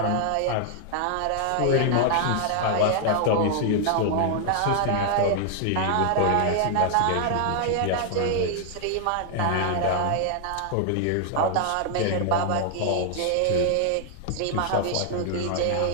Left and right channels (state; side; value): different; both; correlation 0.00